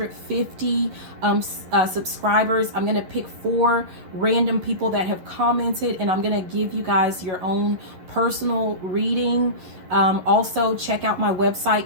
subscribers, I'm going to pick 4 random people that have commented, and I'm going to give you guys your own personal reading. Also, check out my website,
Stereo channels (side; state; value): left; late; 11 ms